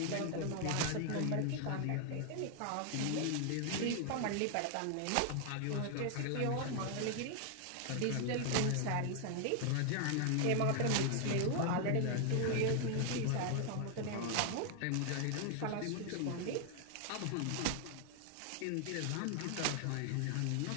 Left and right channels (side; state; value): both; different; correlation 0.00